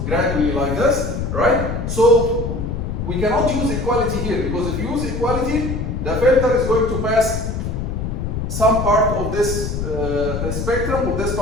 gradually like this, right? So we cannot use equality here, because if you use equality, the filter is going to pass some part of this spectrum, or this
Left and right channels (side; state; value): left; noise; rumble, 3 dB below the sound